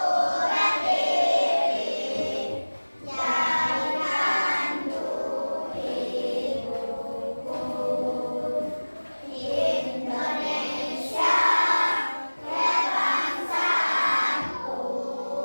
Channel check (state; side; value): inverted; both; correlation -1.00